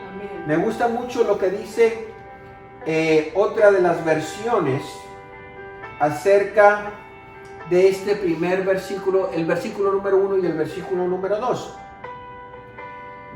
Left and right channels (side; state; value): both; identical; correlation 1.00